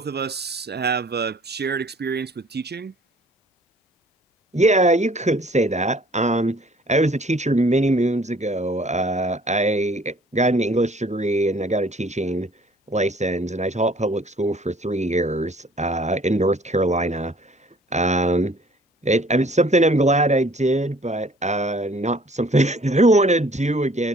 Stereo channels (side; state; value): both; normal; correlation 0.55